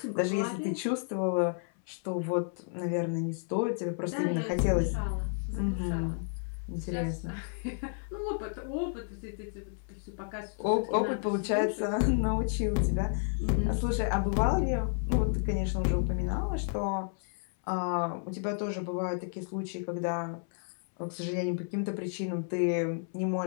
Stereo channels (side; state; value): right; silent; 57 dB below the other